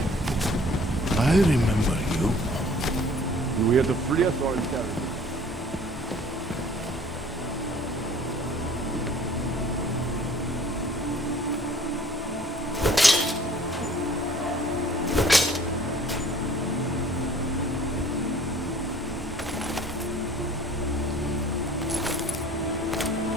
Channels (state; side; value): normal; both; correlation 0.52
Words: I remember you. You here to free us or interrogate?